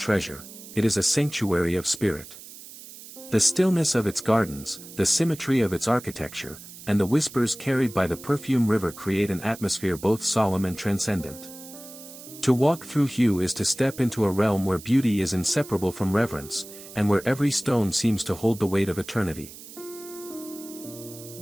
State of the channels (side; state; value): right; noise; hiss, 16 dB below the sound